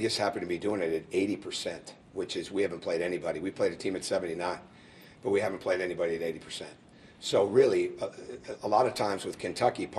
happen to be doing it at 80%, which is we haven't played anybody. We played a team at 79, but we haven't played anybody at 80%. So really, a lot of times with Kentucky,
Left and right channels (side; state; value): both; identical; correlation 1.00